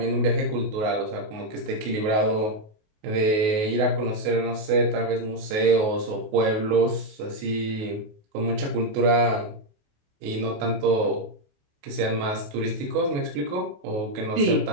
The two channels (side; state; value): left; late; 28 ms